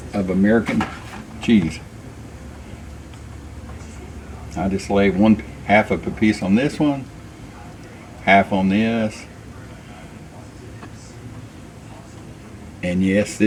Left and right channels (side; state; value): both; identical; correlation 1.00